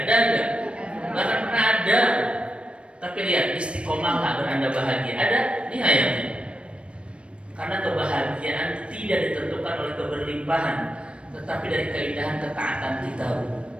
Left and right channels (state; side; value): late; left; 0.059 ms